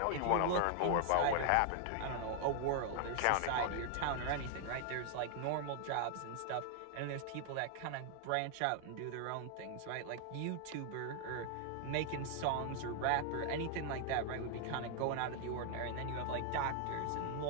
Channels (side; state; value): both; different; correlation 0.00